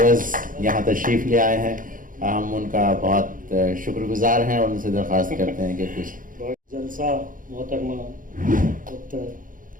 यहाँ तशरीफ़ ले आए हैं। हम उनका बहुत शुक्रगुजार हैं और उनसे दरख्वास्त करते हैं कि कुछ जलसा मोहतरमा डॉक्टर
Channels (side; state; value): left; late; 0.39 ms